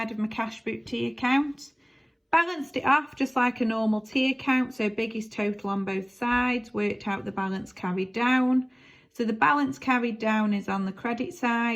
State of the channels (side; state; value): both; identical; correlation 1.00